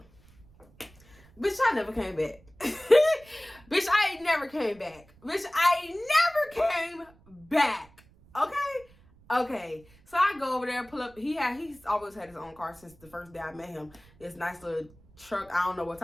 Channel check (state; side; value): noise; right; rumble, 27 dB below the sound